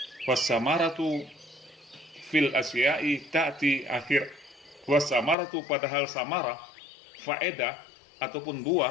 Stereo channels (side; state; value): right; drops out; at 5.4 s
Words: Wasamaratu fil asya'i ta'ti akhir. Wasamaratu, padahal samarah, faedah ataupun